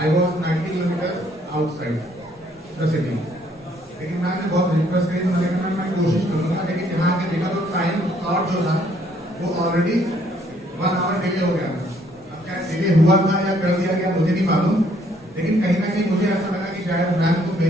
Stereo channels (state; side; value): normal; both; correlation 0.66